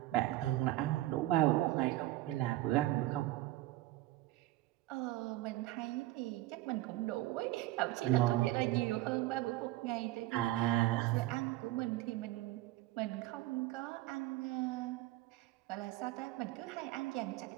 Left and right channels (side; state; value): left; quieter; 16.6 dB